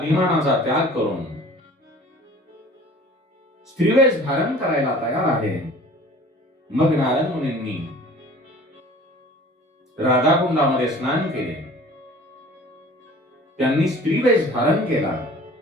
त्याग करून स्त्रीवेश धारण करायला तयार आहे. मग नारद मुनींनी राधाकुंडामध्ये स्नान केले, त्यांनी स्त्रीवेश धारण केला.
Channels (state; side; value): normal; both; correlation 0.46